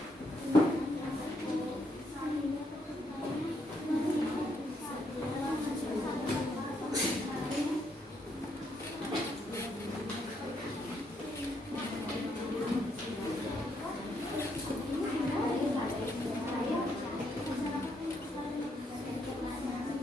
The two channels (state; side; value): normal; both; correlation 0.75